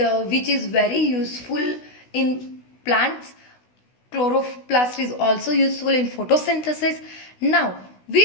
which is very useful in plants. Chloroplast is also useful in photosynthesis. Now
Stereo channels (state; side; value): late; right; 16 ms